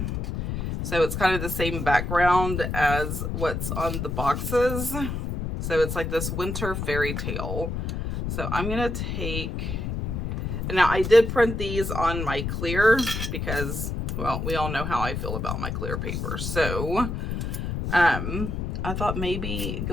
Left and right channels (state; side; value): noise; left; rumble, 3 dB below the sound